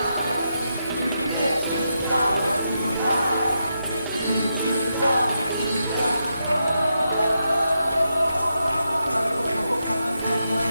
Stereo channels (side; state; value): both; inverted; correlation -0.85